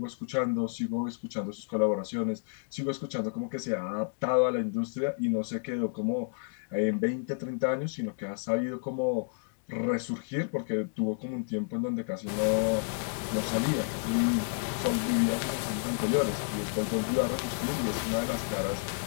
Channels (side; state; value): right; silent; digital silence